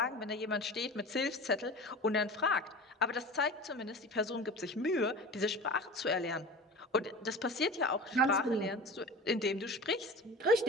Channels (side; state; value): both; normal; correlation 0.35